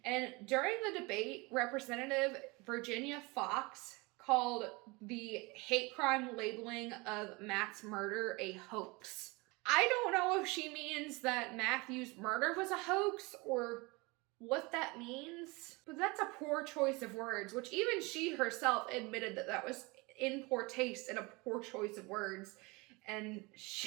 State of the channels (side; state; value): left; quieter; 25.8 dB